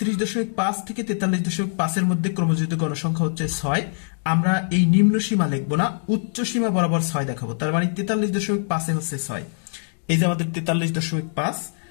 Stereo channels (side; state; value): right; silent; digital silence